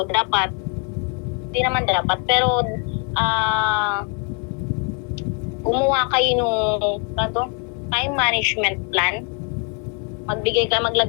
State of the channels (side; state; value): right; quieter; 38.1 dB